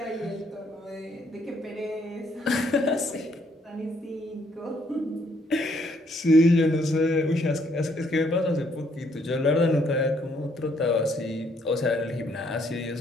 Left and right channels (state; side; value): normal; both; correlation 0.69